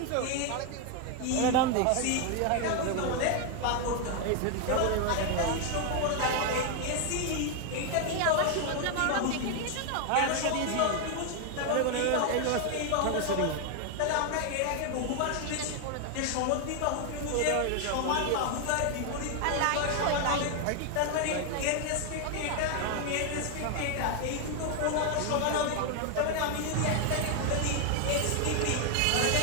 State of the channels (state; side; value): different; both; correlation 0.01